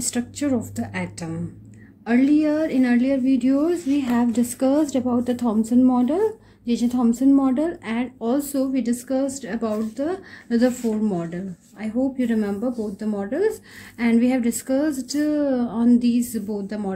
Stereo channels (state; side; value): identical; both; correlation 1.00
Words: structure of the atom. In earlier videos we have discussed about the Thomson model, J.J. Thomson model, and also we discussed about the Rutherford model. I hope you remember both the models, and we have discussed on these both the